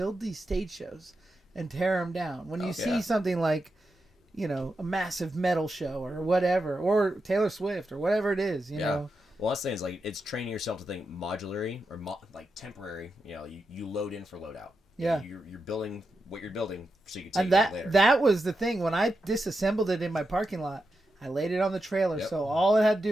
these stage shows and tear them down. When you see something like, a massive metal show or whatever, or Taylor Swift or whatever it is, you know. Well, that's the thing is like it's training yourself to think modularly or like temporary. You load in for load out. Yeah. You're building what you're building so you can take it later. That was the thing. When I disassembled it in my parking lot, I laid it on the trailer, so all it had to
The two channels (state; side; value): normal; both; correlation 0.88